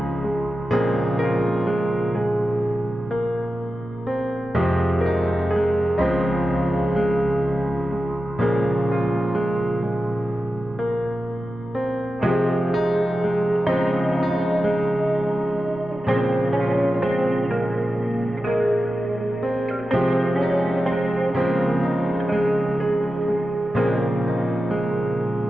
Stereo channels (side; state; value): right; noise; rumble, 23 dB below the sound